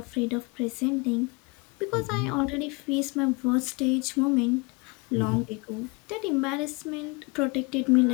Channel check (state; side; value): quieter; right; 28.5 dB